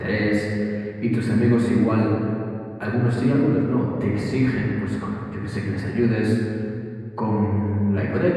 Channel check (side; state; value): both; identical; correlation 1.00